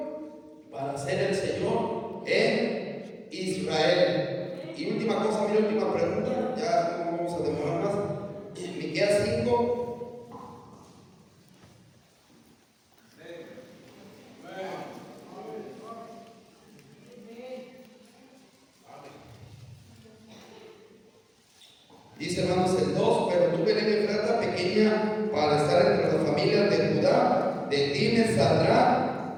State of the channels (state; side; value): identical; both; correlation 1.00